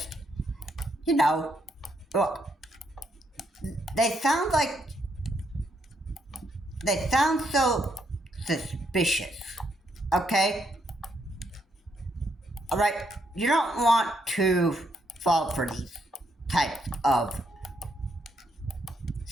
look, they sound so suspicious, okay? Alright, you don't want to fall for these types of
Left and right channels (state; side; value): normal; both; correlation 0.76